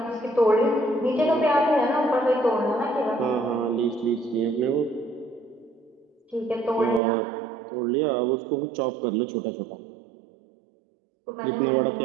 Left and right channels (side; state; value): left; drops out; at 7.0 s